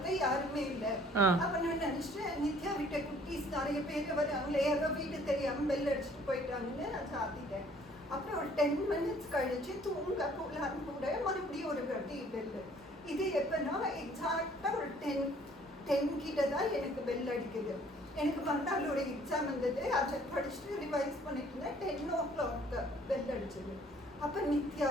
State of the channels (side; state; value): both; normal; correlation 0.58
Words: யாருமே இல்ல. ஆ. அப்ப நான் நினைச்சேன் நித்யா வீட்டை குட்டீஸ் நிறைய பேர் வராங்களே, யாரோ வீடு தெரியாம பெல் அடிச்சுட்டு போயிட்டாங்கன்னு நான் சாத்திட்டேன். அப்புறம் ஒரு 10 மினிட்ஸ் கழிச்சு தூங்க போகலான்னு கூட மறுபடியும் ஒரு வாட்டி பெல். இது எப்பன்னா எக்ஸாக்டா ஒரு 10 கிட்ட தான் எனக்கு பெல் அடிக்குது. எனக்கு மறுநாள் ஒரு எக்ஸாம் இருந்தது, அதை படிச்சுட்டு ரிவைஸ் பண்ணிட்டு இருந்தேன். 10 o'clock பெல் அடிச்சது. அப்போ நித்யா